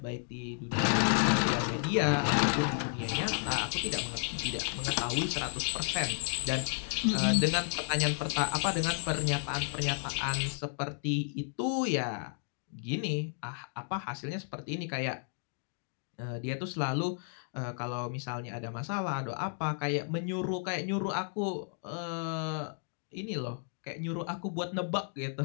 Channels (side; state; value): right; silent; 56 dB below the other